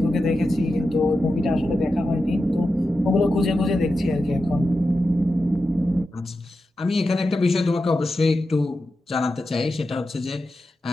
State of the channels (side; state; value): both; normal; correlation 0.91